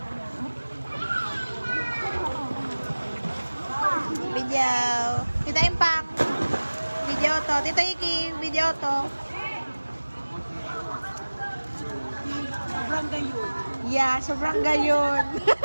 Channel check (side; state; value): both; inverted; correlation -1.00